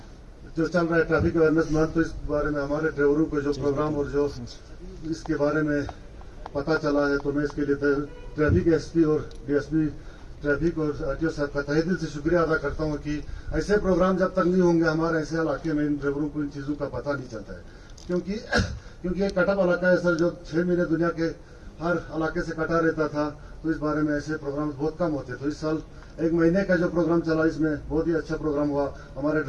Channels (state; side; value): identical; both; correlation 1.00